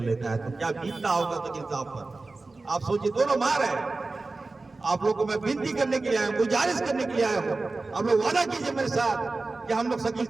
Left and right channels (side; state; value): left; quieter; 3.5 dB